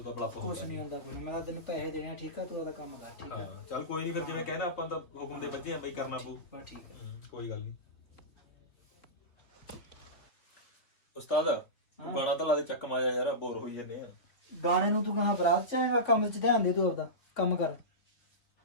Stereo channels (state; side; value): late; right; 3.8 ms